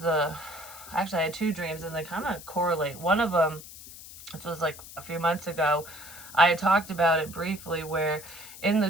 I had 2 dreams, and they kind of correlate. One of them, which was like a few months ago, I had talked about it briefly, where in the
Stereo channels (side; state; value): left; noise; hiss, 15 dB below the sound